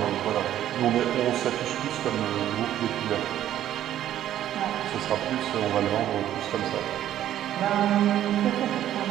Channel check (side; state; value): left; quieter; 11.9 dB